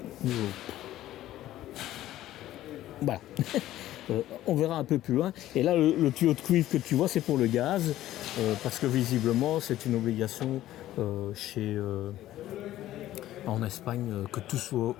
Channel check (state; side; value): quieter; right; 14.0 dB